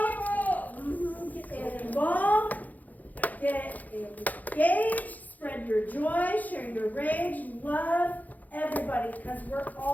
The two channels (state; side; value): late; right; 0.080 ms